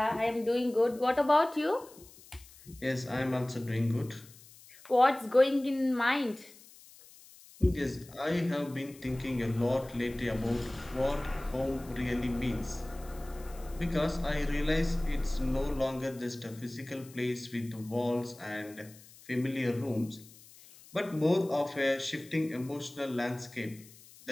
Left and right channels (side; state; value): left; noise; hiss, 22 dB below the sound